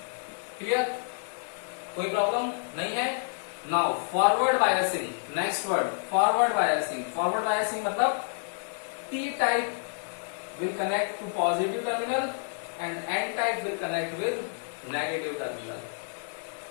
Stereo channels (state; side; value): silent; right; digital silence